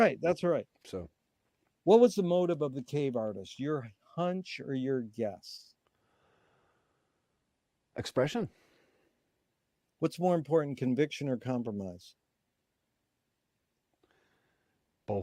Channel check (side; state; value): both; identical; correlation 1.00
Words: So, what was the motive of the cave artist? Your hunch or your guess? Expression. What's more important, conviction or compromise?